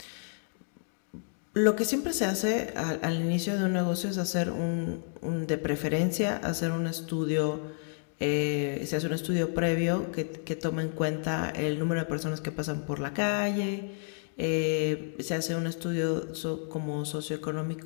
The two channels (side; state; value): right; silent; 58 dB below the other